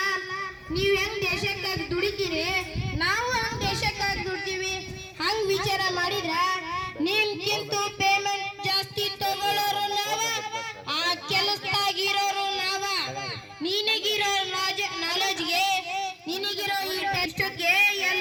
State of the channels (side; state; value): both; identical; correlation 1.00